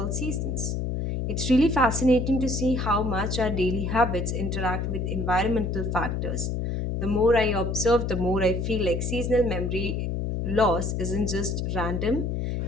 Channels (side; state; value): left; noise; hum, 1 dB below the sound